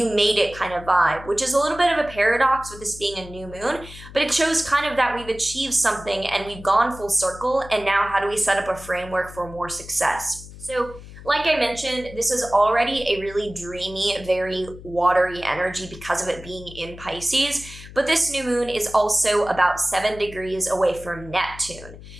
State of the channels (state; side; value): noise; left; hum, 16 dB below the sound